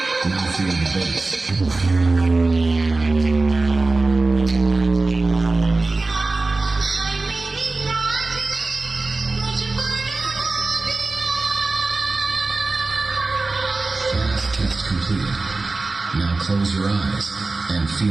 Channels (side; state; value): left; quieter; 3.5 dB